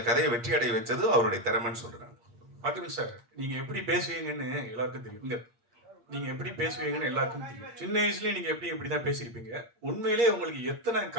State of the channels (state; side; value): late; left; 8.6 ms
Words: கதையை வெற்றி அடைய வச்சது அவருடைய திறமைன்னு சொல்றேன். பாத்தீங்க சார், நீங்க எப்படி பேசுவீங்கன்னு எல்லாருக்கும் தெரியும். நீங்க எப்படி பேசுவீங்கன்னு எல்லாருக்கும் தெரியும். சின்ன வயசுலயே நீங்க இப்படிதான் பேசியிருப்பீங்க. உண்மையிலேயே உங்களுக்கு எத்தனை